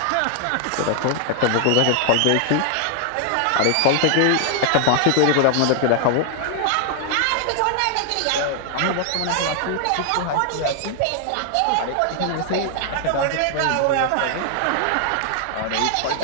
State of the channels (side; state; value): both; different; correlation 0.00